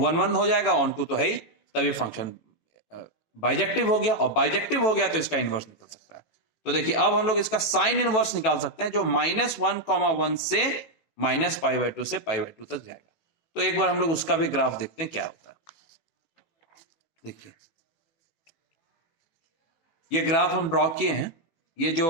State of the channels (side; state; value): right; late; 18 ms